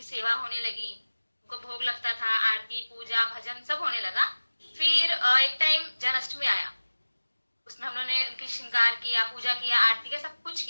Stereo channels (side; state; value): both; inverted; correlation -1.00